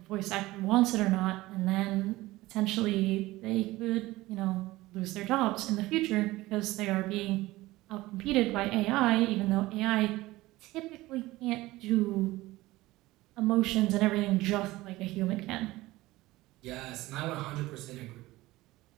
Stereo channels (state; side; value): quieter; left; 18.5 dB